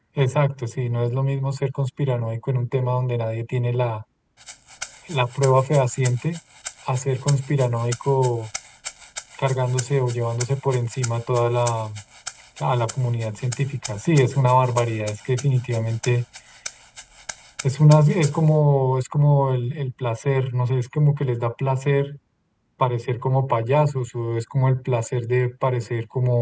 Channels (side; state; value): both; identical; correlation 1.00